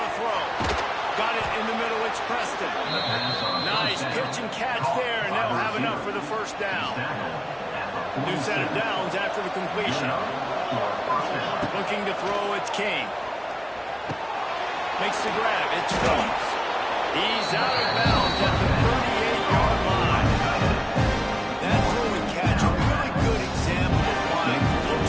throw. Got it in the middle, it's Preston. Nice pitch and catch there, and they'll have enough for the first down. New set of downs after the completion. Looking to throw, it's King. Makes the grab, it's Phillips. He's out of bounds at the 38-yard line. That throw and catch, a really good example of why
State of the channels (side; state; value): both; identical; correlation 1.00